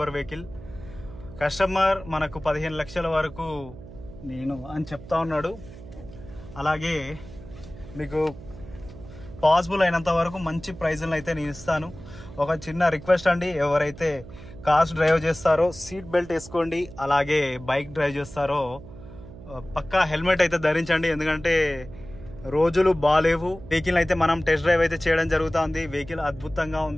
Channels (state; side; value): noise; right; hum, 16 dB below the sound